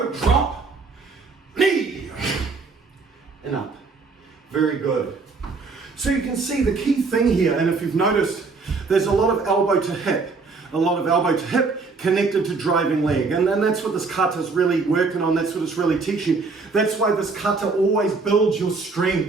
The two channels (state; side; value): quieter; left; 4.3 dB